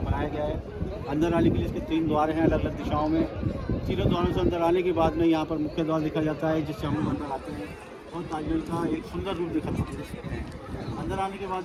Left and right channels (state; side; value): identical; both; correlation 1.00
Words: बनाया गया है। अंदर आने के लिए इसके 3 द्वार हैं अलग अलग दिशाओं में। तीनों द्वारों से अंदर आने के बाद में यहाँ पर मुख्य द्वार देखा जाता है जिससे हम लोग अंदर आते हैं और ताजमहल का एक सुंदर रूप देखा सकते हैं। अंदर आने के